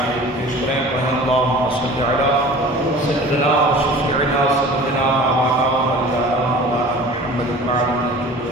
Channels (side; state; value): both; normal; correlation 0.42